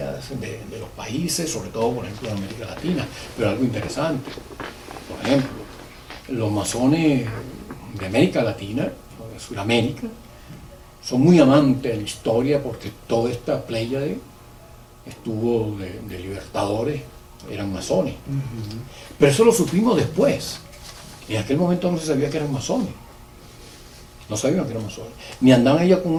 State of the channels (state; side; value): identical; both; correlation 1.00